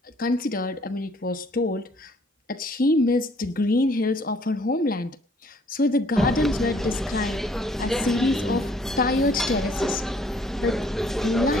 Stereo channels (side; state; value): both; normal; correlation 0.61